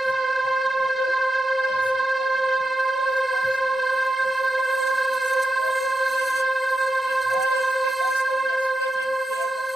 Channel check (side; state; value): both; normal; correlation 0.88